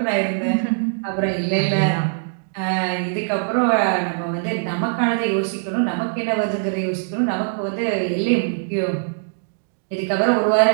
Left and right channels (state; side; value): silent; left; digital silence